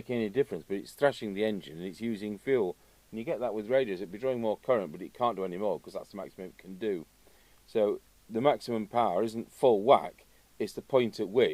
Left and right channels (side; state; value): both; identical; correlation 1.00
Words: any difference, but it's thrashing the engine and it's using fuel, and you get that with radios. It'd be drawing more current, but it can't do any more because that's the maximum it can do. So the maximum power isn't full whack, it's the point at